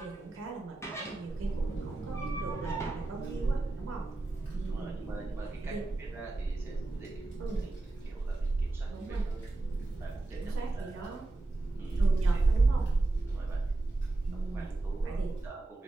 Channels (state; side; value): quieter; left; 3.0 dB